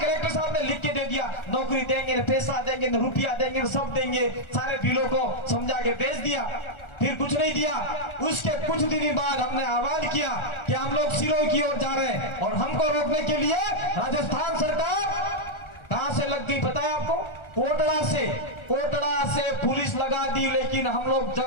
साहब ने लिख के दे दिया, नौकरी देंगे, पैसा देंगे, रुपया देंगे, सब देंगे, सारे बिलों को समझा के भेज दिया। फिर कुछ नहीं दिया। उसके कुछ दिन बाद हमने आह्वान किया कि हम लोग सिरोही की ओर जा रहे हैं, और हमको रोकने के लिए राजस्थान सरकार कहां से लग गई पता है आपको? कोटड़ा से पुलिस लगा दी। लेकिन हम लोग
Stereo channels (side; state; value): right; late; 1.4 ms